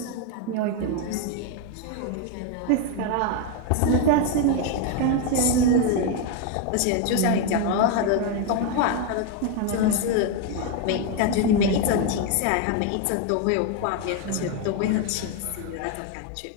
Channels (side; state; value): both; different; correlation 0.02